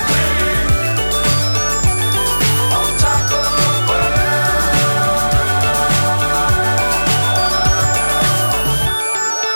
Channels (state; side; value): inverted; both; correlation -1.00